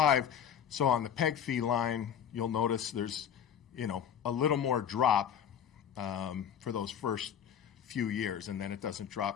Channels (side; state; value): right; quieter; 8.7 dB